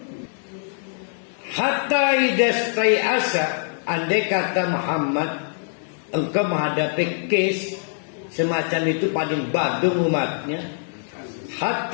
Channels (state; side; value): silent; right; digital silence